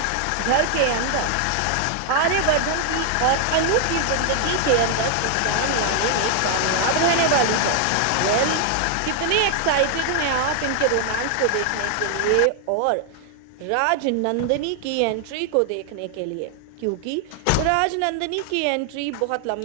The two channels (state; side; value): different; both; correlation 0.00